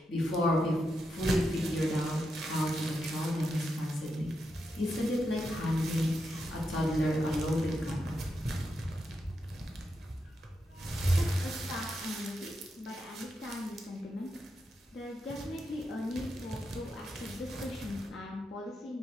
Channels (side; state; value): both; normal; correlation 0.85